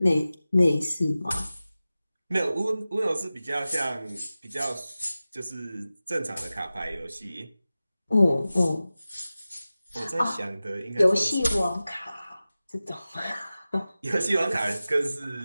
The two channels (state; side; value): inverted; both; correlation -0.95